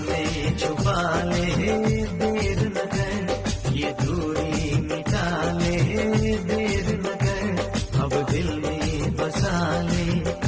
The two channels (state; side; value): identical; both; correlation 1.00